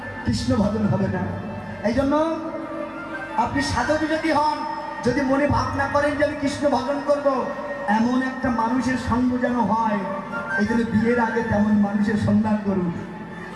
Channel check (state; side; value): identical; both; correlation 1.00